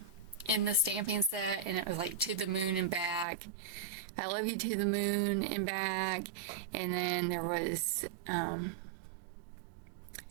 in the stamping set, and it was like to the moon and back. I love you to the moon and back. And then there was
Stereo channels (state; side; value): drops out; left; at 3.2 s